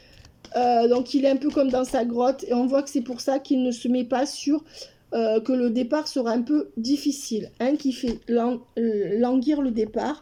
donc il est un peu comme dans sa grotte. Et on voit que c'est pour ça qu'il ne se met pas sur que le départ sera un peu difficile. Hein, qui fait languir le départ.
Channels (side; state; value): both; identical; correlation 1.00